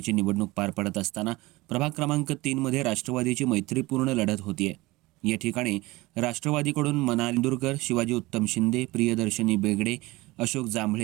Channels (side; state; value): left; quieter; 20.9 dB